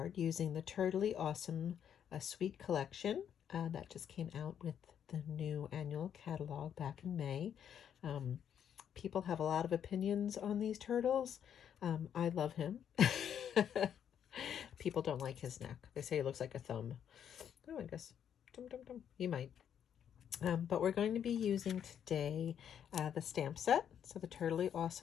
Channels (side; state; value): right; quieter; 8.9 dB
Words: using the Turtley Awesome Sweet Collection that just came out with the new annual catalog back in May. People have a lot of opinions on these turtles. I love him. People don't like his neck. They say he looks like a thumb. Oh, I guess. He might. But we're going to be using today the stamp set. So the Turtley